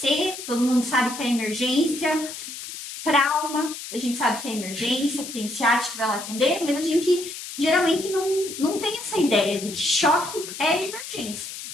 todo mundo sabe que é emergência. Trauma, a gente sabe que é emergência, que tem ciático que vai lá atender, mas a gente geralmente não tem essa ideia de que choque é emergência,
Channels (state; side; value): noise; left; hiss, 10 dB below the sound